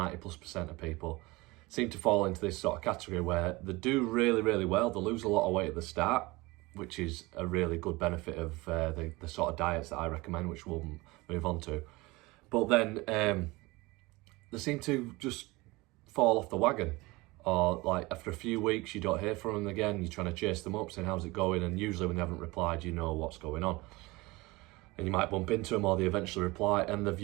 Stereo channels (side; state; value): left; quieter; 22.4 dB